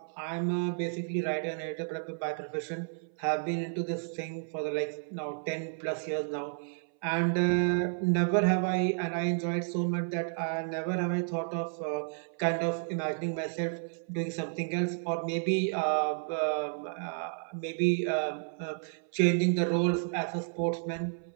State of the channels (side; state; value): left; silent; 57 dB below the other